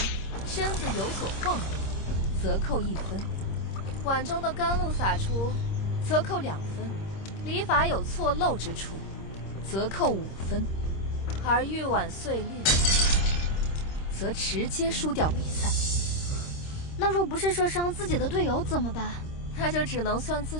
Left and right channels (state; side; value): late; right; 26 ms